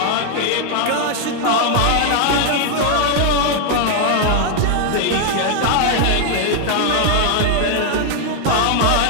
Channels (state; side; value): different; both; correlation 0.00